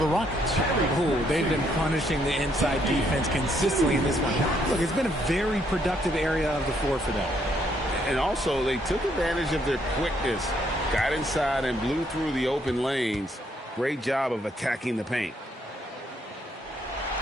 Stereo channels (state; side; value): normal; both; correlation 0.71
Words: Rockets. Oh, they've been punishing the inside defense consistently in this one. Look, it's been a very productive area of the floor for them. And also, they took advantage of their quickness, got inside and blew through the open lanes. Great job of attacking the paint.